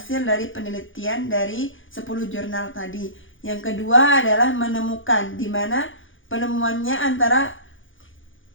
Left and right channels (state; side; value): late; right; 0.57 ms